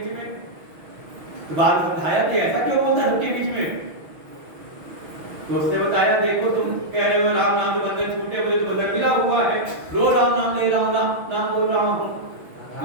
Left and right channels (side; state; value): left; late; 6.2 ms